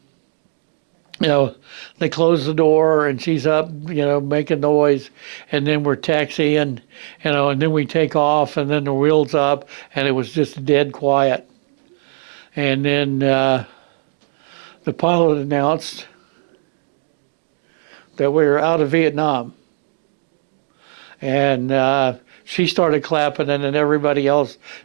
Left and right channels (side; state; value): left; silent; digital silence